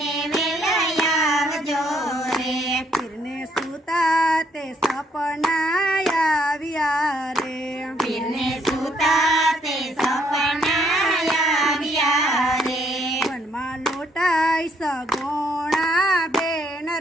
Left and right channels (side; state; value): both; normal; correlation 0.69